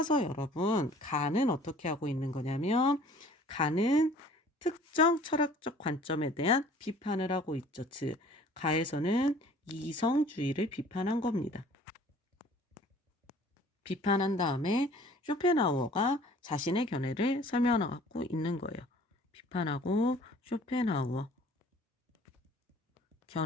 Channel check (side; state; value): both; normal; correlation 0.51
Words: 여러분, 가는 어떻게 하고 있는 거냐면 가는 특정 철학적 관점에 대한 비판을 하고 있죠. 즉, 가에서는 이성주의를 비판한 겁니다. 비판한 다음에 쇼펜하우어가 자신의 견해를 설명하고 있는 거예요. 비판하고 쇼펜하우어